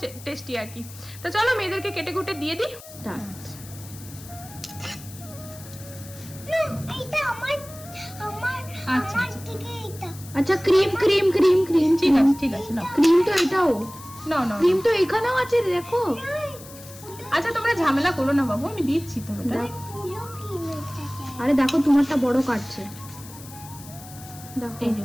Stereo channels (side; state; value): left; noise; hiss, 17 dB below the sound